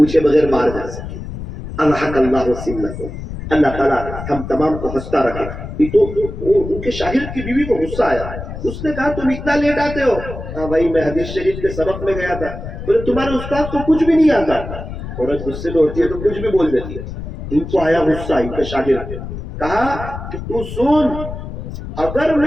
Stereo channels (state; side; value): noise; left; rumble, 9 dB below the sound